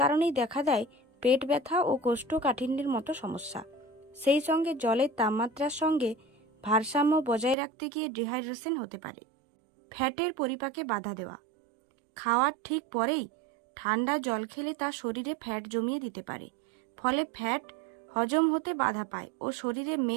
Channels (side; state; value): left; drops out; at 7.6 s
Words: দেখা দেয় পেট ব্যথা ও কোষ্ঠকাঠিন্যের মতো সমস্যা। সেই সঙ্গে জলের তাপমাত্রার সঙ্গে ভারসাম্য বজায় রাখতে গিয়ে ডিহাইড্রেশন হতে পারে। ফ্যাটের পরিপাকে বাধা দেওয়া। খাওয়ার ঠিক পরেই ঠান্ডা জল খেলে তা শরীরে ফ্যাট জমিয়ে দিতে পারে, ফলে ফ্যাট হজম হতে বাধা পায় ও শরীরে